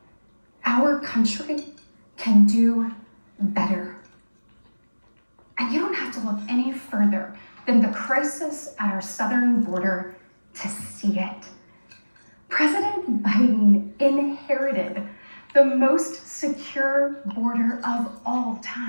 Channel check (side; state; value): both; inverted; correlation -1.00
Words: Our country can do better. And you don't have to look any further than the crisis at our southern border to see it. President Biden inherited the most secure border of all